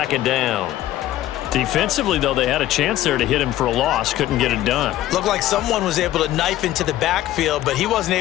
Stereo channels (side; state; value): right; quieter; 14.0 dB